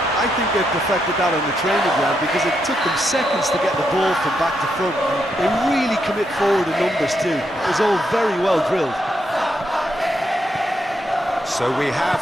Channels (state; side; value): normal; both; correlation 0.80